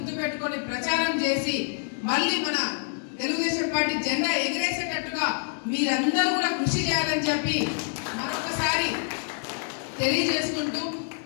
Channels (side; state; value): right; silent; 60 dB below the other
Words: పెట్టుకొని ప్రచారం చేసి మళ్ళీ మన తెలుగుదేశం పార్టీ జెండా ఎగిరేసేటట్టుగా మీరందరూ కూడా కృషి చేయాలని చెప్పి మరొకసారి తెలియజేసుకుంటూ,